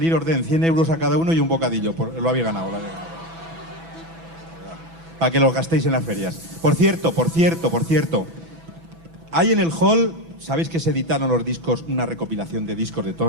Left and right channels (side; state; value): left; late; 6.0 ms